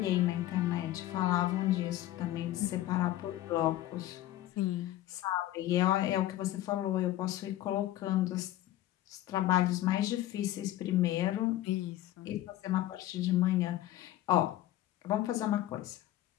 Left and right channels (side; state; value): right; quieter; 14.4 dB